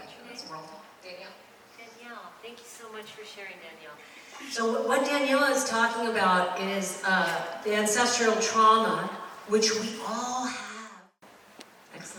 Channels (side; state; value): both; identical; correlation 1.00